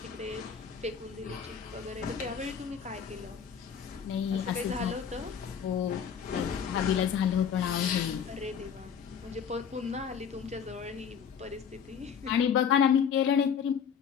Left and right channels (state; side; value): quieter; right; 7.4 dB